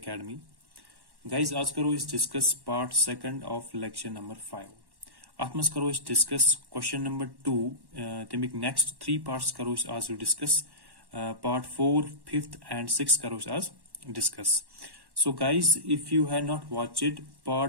Guys, आज करो इस discuss part second of lecture number 5. अथ मज करो इस डिस्कस क्वेश्चन नंबर 2 तमिक नेक्स्ट 3 पार्ट्स करो इस आज discuss part 4, 5th and 6th करो इस आज discuss. So guys, if you have not watched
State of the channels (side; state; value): left; late; 1.1 ms